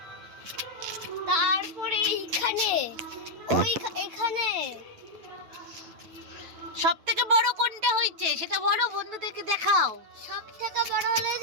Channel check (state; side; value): late; left; 9.2 ms